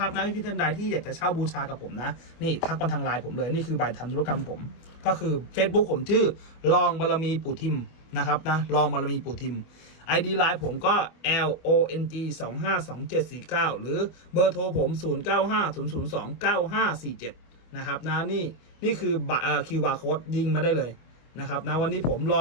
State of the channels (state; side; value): late; right; 25 ms